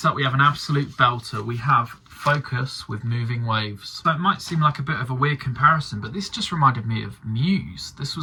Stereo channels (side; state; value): both; identical; correlation 1.00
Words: up we have an absolute belter. We have Focus with Moving Waves. So it might seem like a bit of a weird comparison, but this just reminded me of Muse. This